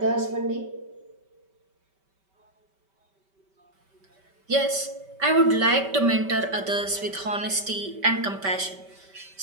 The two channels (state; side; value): late; left; 5.2 ms